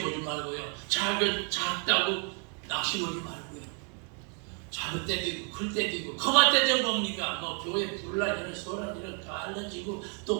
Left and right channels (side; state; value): left; quieter; 39.9 dB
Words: 보지 말고요. 작다고 낙심하지 말고요. 작을 때도 있고 클 때도 있고 커갈 때도 뭡니까? 뭐 교회 분란 이런 소란 이런 다 알려지고